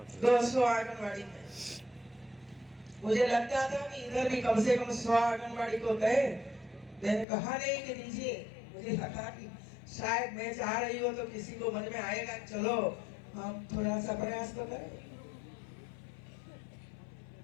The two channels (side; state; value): right; drops out; at 7.2 s